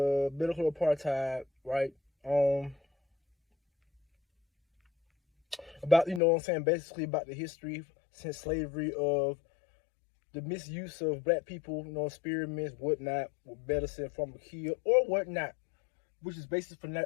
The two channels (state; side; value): drops out; right; at 6.2 s